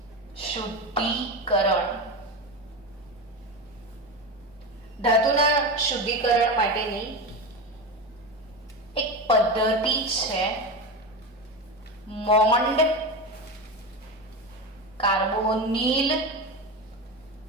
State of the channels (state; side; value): normal; both; correlation 0.20